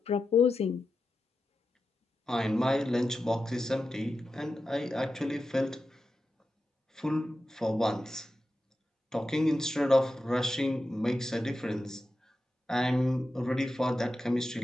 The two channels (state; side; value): normal; both; correlation 0.91